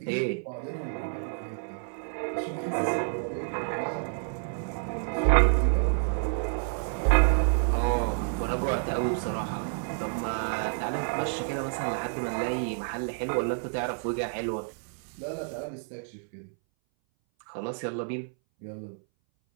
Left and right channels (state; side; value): silent; left; 58 dB below the other